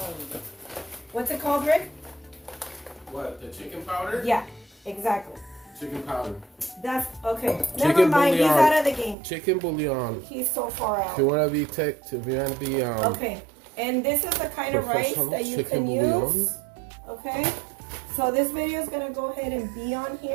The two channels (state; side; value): drops out; left; at 9.2 s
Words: what's it called, Rick? What, the chicken powder? Yeah, exactly. Chicken powder. That's okay. Chicken Never mind. bouillon. He's out of the game. Chicken bouillon. He's so far out. If you want to be okay, and this is the kind of rice that you can use. Okay. So this video is going to go ahead and be on